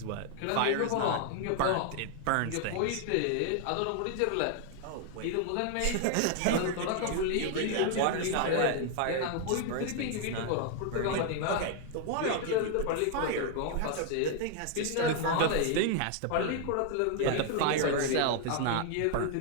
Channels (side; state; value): both; different; correlation 0.00